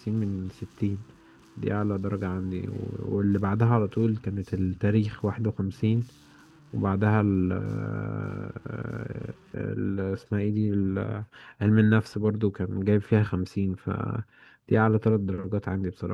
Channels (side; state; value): both; identical; correlation 1.00